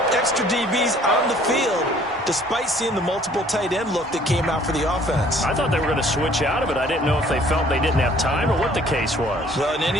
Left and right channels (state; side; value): normal; both; correlation 0.57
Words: extra DBs on the field despite seeing the multiple tight end look that came out for the offense. I thought they were going to switch out of it. I didn't know if they felt they didn't have time or what the case was. Well, in